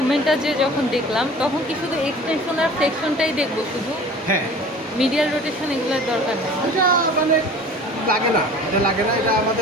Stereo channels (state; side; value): normal; both; correlation 0.43